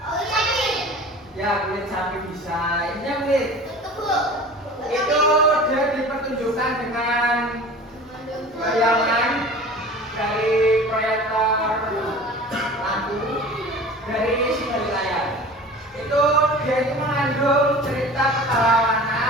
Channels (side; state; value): both; normal; correlation 0.40